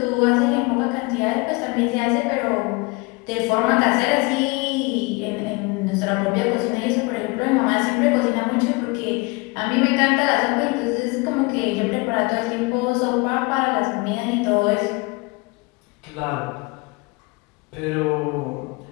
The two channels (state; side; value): quieter; right; 26.1 dB